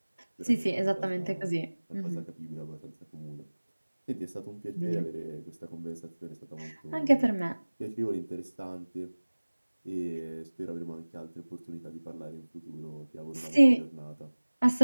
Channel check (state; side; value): inverted; both; correlation -1.00